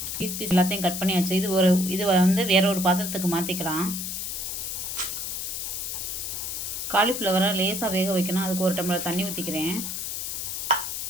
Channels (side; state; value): left; noise; hiss, 4 dB below the sound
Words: பீஸ் எல்லாத்தையும் கட் பண்ணியாச்சு. இது வந்து வேற ஒரு பாத்திரத்துக்கு மாற்றிக்கலாம். காலிஃப்ளவரை லேசாக வேக வைக்கணும். அதுக்கு ஒரு டம்ளர் தண்ணி ஊற்றிக்கிறேன்.